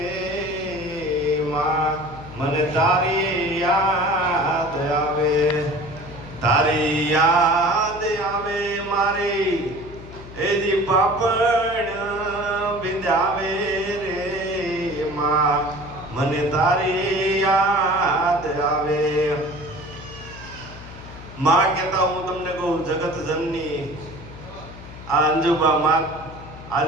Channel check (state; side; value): noise; left; hum, 15 dB below the sound